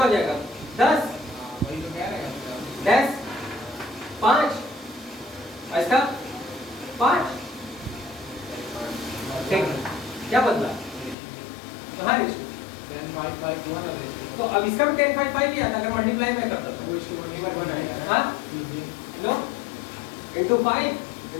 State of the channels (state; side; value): drops out; right; at 11.2 s